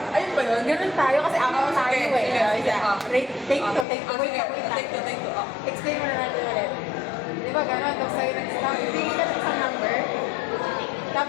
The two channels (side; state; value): right; drops out; at 3.9 s